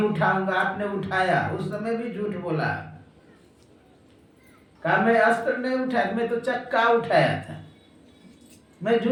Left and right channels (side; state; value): both; identical; correlation 1.00